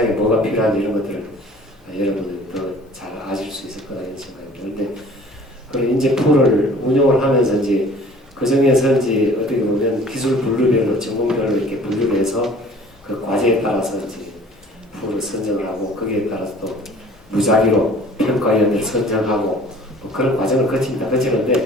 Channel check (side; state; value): both; normal; correlation 0.49